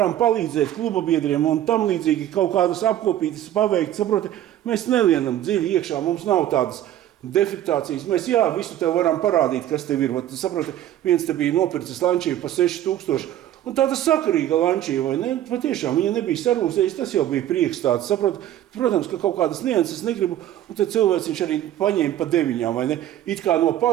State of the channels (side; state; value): left; quieter; 12.2 dB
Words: palīdzēt kluba biedriem un tam līdzīgi kaut kādas apkopītas paveikt. Saproti, mēs nelienam dziļi iekšā, mums nav tādas defektācijas. Mēs, visu tev varam parādīt, kas tev ir. Saproti, viens te bija nopircis Lancia pa 6,000. Un tāda sakarīga Lancia, vai ne? Patiešām viņa nebija sarūsējis, tas jau bija prieks tāds. Saprot, protams, ka kaut kādas nianses negribu, un tad cilvēks viņš arī paņēma pa 9, vai ne? It kā no